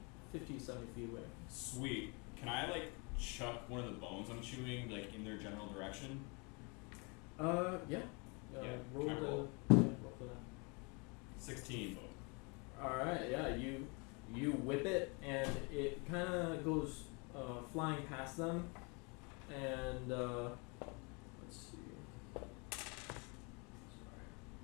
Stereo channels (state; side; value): quieter; right; 31.6 dB